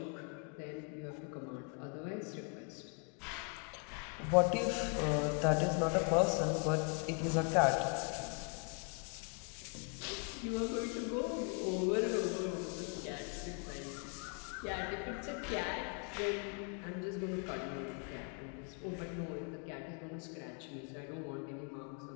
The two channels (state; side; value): quieter; right; 38.2 dB